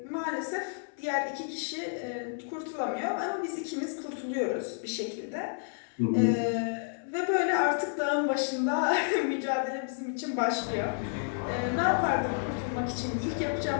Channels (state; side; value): silent; right; 57 dB below the other